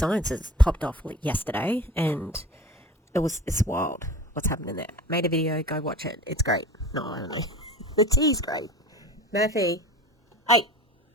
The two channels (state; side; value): normal; both; correlation 0.38